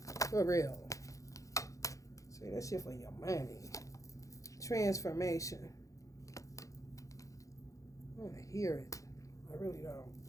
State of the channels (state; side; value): late; right; 0.16 ms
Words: For real. Say that shit for your money. Transformation. I want to hear it. I really don't.